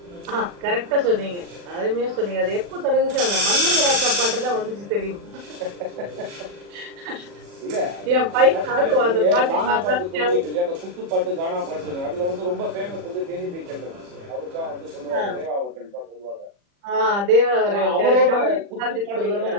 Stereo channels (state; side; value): late; left; 40 ms